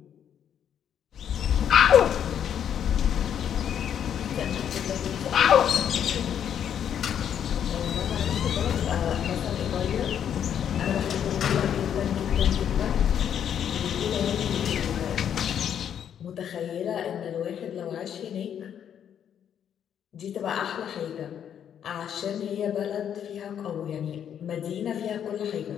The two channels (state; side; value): quieter; right; 9.1 dB